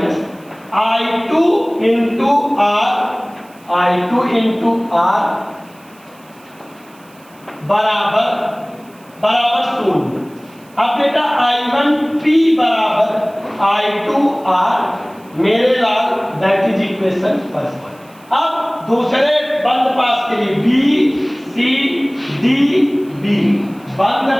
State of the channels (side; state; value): right; noise; hiss, 28 dB below the sound